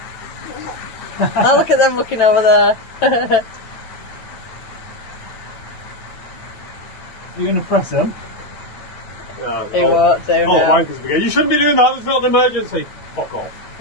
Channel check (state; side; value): late; right; 8.9 ms